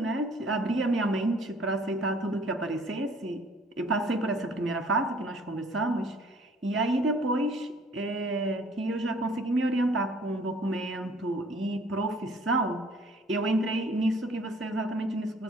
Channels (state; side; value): normal; both; correlation 0.56